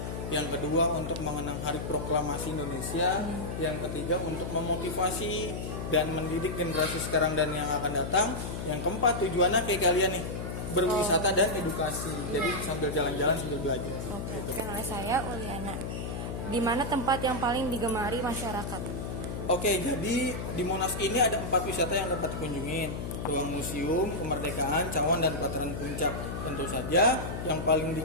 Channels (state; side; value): noise; left; hum, 5 dB below the sound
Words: yang kedua untuk mengenang Hari Proklamasi Indonesia, yang ketiga untuk memotivasi dan mendidik generasi sekarang dan yang akan datang, yang keempat tujuannya kayak kalian nih, berwisata dan edukasi. Jadi sambil jalan-jalan sambil belajar. Oke, kenal saya Uliana. Di mana tempat yang paling digemari masyarakat? Oke, jadi di Monas ini ada 4 wisata yang dapat dikunjungin. Ruang Museum, Kemerdekaan, Cawan, dan Pelataran Puncak. Tentu saja yang paling